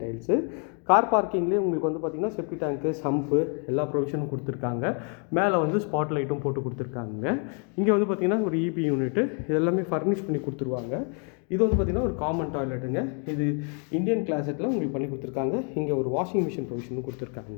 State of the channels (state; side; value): quieter; right; 39.8 dB